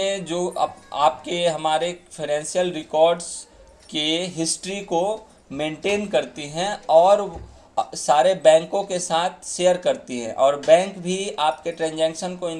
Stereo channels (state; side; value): identical; both; correlation 1.00